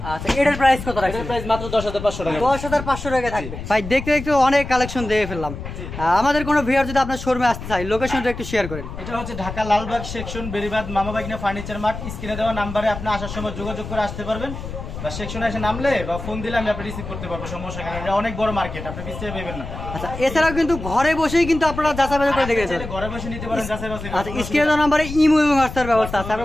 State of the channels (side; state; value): left; noise; rumble, 9 dB below the sound